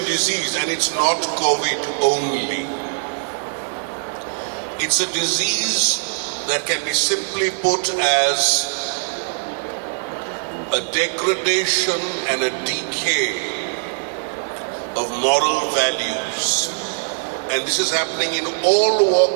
disease, and it's not COVID only. It's a disease that can be simply put as a degradation and a decay of moral values. And this is happening in all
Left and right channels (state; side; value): silent; left; digital silence